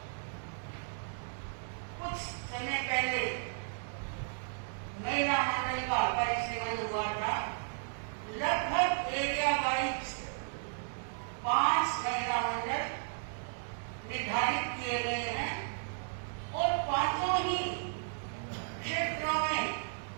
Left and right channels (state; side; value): silent; left; digital silence